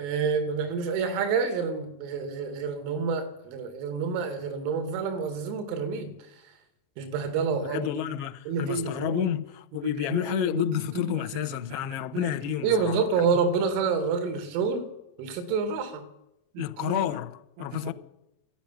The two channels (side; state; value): left; late; 28 ms